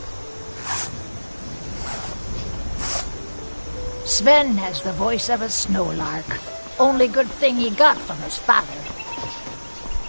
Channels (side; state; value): both; inverted; correlation -1.00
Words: Sven has the voice of a snowlark. Only good thing he got from his father.